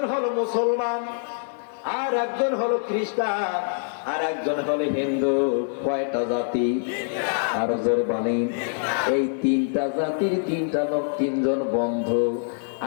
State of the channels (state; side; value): silent; right; 60 dB below the other